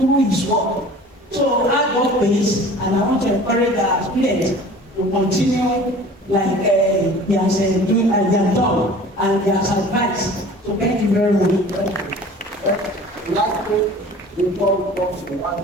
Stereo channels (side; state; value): both; normal; correlation 0.44